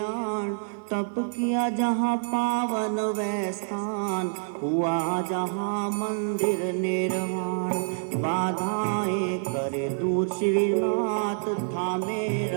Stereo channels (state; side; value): silent; left; digital silence